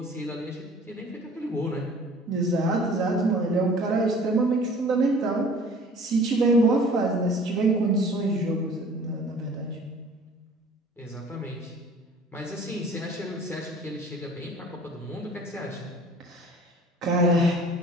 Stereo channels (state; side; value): normal; both; correlation 0.49